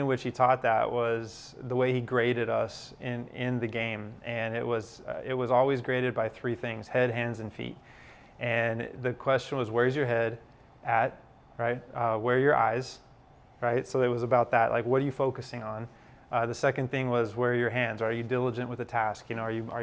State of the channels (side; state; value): both; identical; correlation 1.00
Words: which he taught that was the way he graded us in the game, and it was always graded by three things: head, hands, and feet. And the question was, where's your head at, right? Where are your eyes, right? So it was about that, like what are you focusing on? The second thing was, where are your hands? Are you diligent with the task? Are